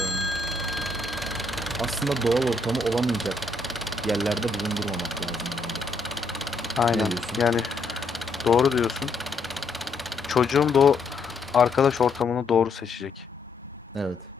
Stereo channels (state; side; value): quieter; right; 3.4 dB